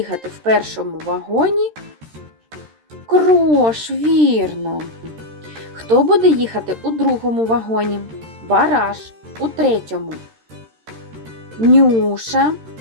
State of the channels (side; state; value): left; late; 13 ms